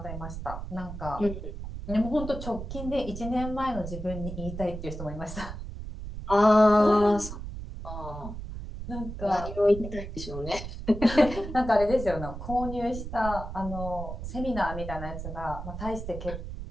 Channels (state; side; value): noise; right; rumble, 8 dB below the sound